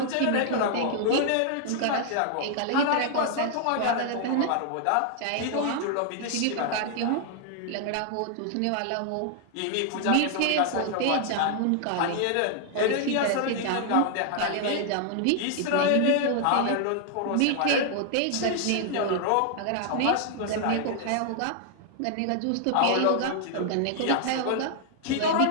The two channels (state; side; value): different; both; correlation 0.00